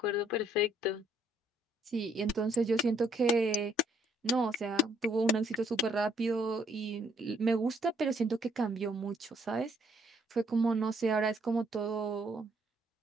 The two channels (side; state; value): both; normal; correlation 0.67